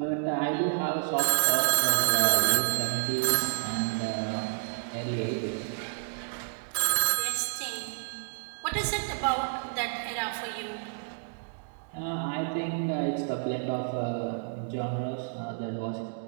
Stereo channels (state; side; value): silent; left; digital silence